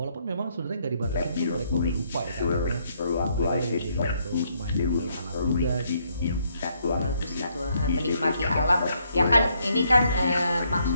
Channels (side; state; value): both; inverted; correlation -0.72